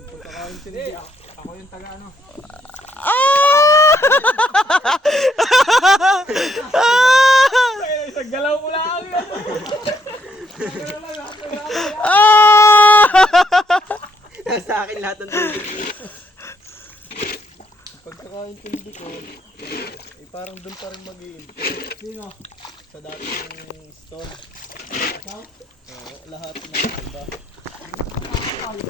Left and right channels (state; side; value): normal; both; correlation 0.72